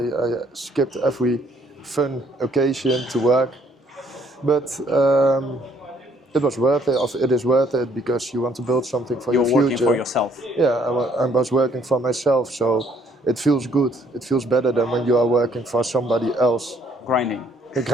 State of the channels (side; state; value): both; normal; correlation 0.65